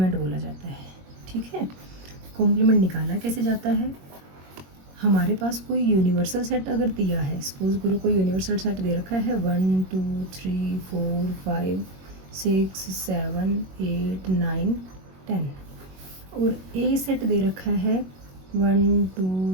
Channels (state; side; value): late; left; 21 ms